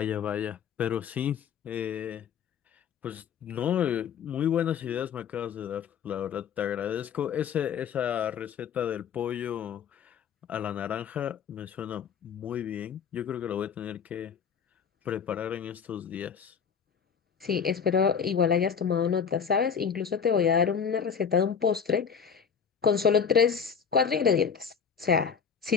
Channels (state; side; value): quieter; right; 6.9 dB